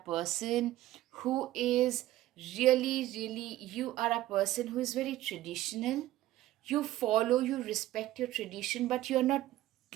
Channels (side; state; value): left; quieter; 15.1 dB